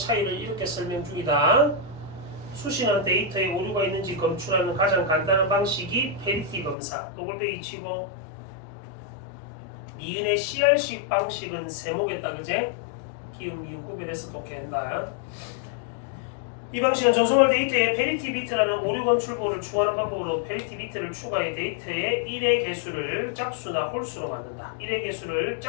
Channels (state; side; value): drops out; right; at 6.8 s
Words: 이렇게 설명 중이다. 수신한 데이터에 오류가 있는지 검출하는 가장 간단한 방식이 페리티 검사. 더블베이 치고 니은의 CR식 방식은 세모겠다, 그제? 기음, 미음 구별해서 독해한다. 이 방식은 전송할 데이터에 페리티 비트라는 오류 검출부호를 추가하는 방법으로 페리티 비트를 추가해 데이터의 1의 개수를 짝수나 홀수로 만든다. 1의 개수를